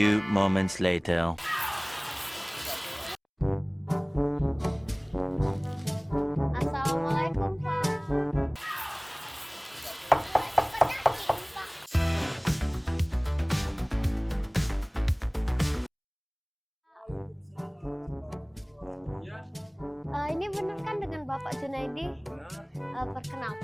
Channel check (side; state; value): both; identical; correlation 1.00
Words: moments later. Assalamualaikum Pak. Ini benar kan dengan Bapak Junaidi?